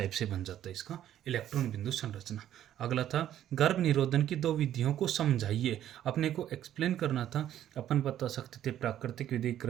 से बन जाता है इसका इलेक्ट्रॉन बिंदु संरचना। अगला था गर्भ निरोधन की दो विधियों को समझाइए। अपने को एक्सप्लेन करना था। अपन बता सकते थे प्राकृतिक विधि,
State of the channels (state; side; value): quieter; left; 11.5 dB